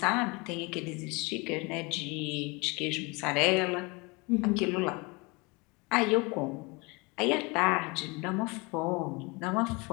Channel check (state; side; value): quieter; right; 27.4 dB